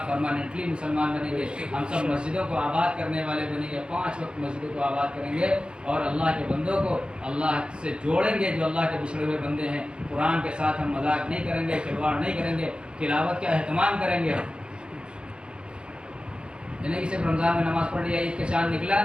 پرماننٹلی مسلمان بنیں گے. ہم سب مسجدوں کو آباد کرنے والے بنیں گے, 5 وقت مسجدوں کو آباد کریں گے اور اللہ کے بندوں کو اللہ سے جوڑیں گے جو اللہ کے بچھڑے ہوئے بندے ہیں. قرآن کے ساتھ ہم مذاق نہیں کریں گے, کھلواڑ نہیں کریں گے, تلاوت کا اہتمام کریں گے. یعنی کہ صرف رمضان میں نماز پڑھ لیا, عید کا چاند نکلا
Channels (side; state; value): left; late; 0.053 ms